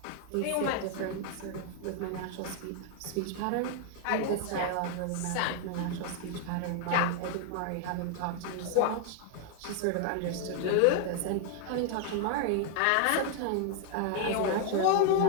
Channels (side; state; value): both; different; correlation 0.00